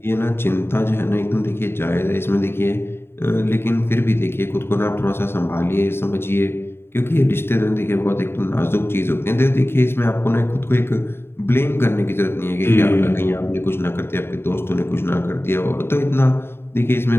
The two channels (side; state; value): right; late; 0.11 ms